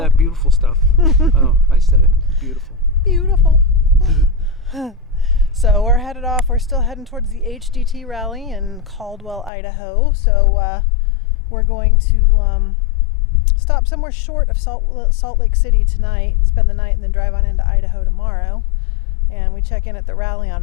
that beautiful stuff. Oh, I said it. Beautiful. Beautiful. So we're headed off. We're still heading towards the HDT rally in Caldwell, Idaho. So we're going to stop somewhere short of Salt Lake City tonight, spend the night, and then drive on into Idaho tomorrow. And we check in at the rally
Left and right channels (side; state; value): right; drops out; at 9.5 s